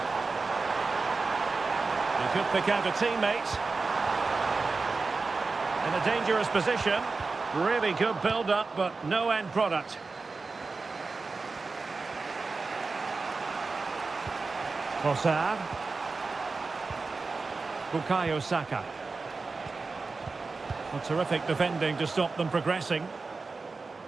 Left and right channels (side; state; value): left; quieter; 4.1 dB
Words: He could pick out a teammate. In a dangerous position. Really good build-up, but no end product. Trossard. Bukayo Saka. A terrific defending to stop them progressing.